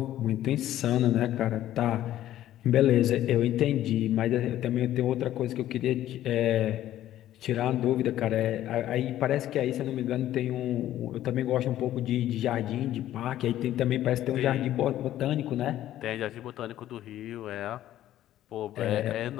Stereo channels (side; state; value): right; quieter; 13.0 dB